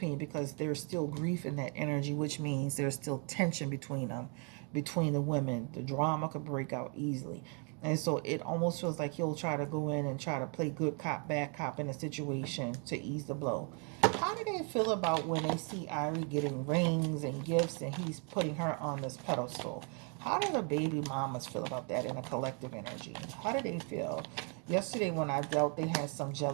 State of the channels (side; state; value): left; quieter; 38.2 dB